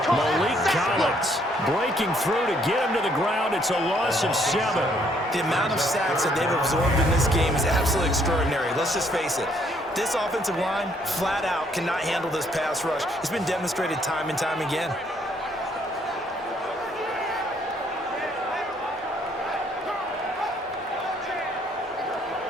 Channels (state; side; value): normal; both; correlation 0.67